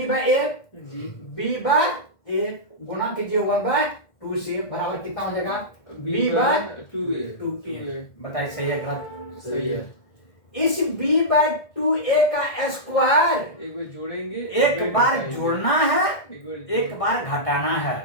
बाय a, जी। b बाय a गुना कीजिए 1/2 से, बराबर कितना हो जाएगा, b बाय 2a। बताइए सही है गलत, सही है। इस b/2a का स्क्वायर एक बार जोड़ेंगे, एक बार जोड़ना है, एक एक बार घटाना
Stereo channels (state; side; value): late; right; 1.7 ms